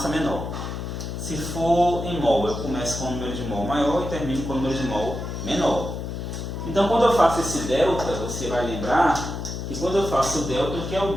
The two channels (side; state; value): left; noise; hum, 6 dB below the sound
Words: menor. Se for em mol, eu começo com o número de mol maior e termino com o número de mol menor. Então, quando eu faço esse delta, você vai lembrar que quando eu faço o delta, o que é o